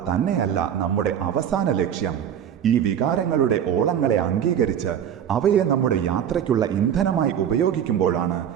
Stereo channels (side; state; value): left; quieter; 9.2 dB